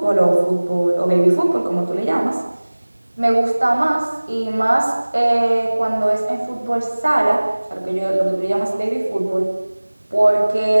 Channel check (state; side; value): inverted; both; correlation -1.00